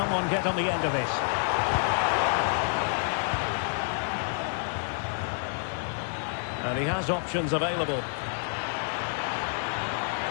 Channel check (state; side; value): silent; right; 59 dB below the other